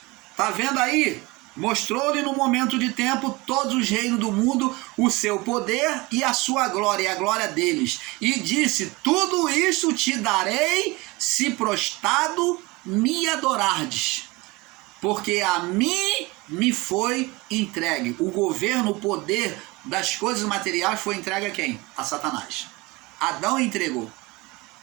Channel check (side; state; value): left; quieter; 23.5 dB